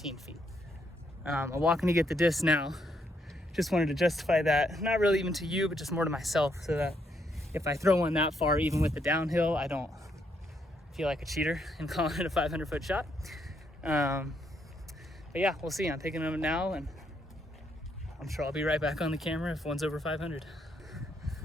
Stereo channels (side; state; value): both; normal; correlation 0.75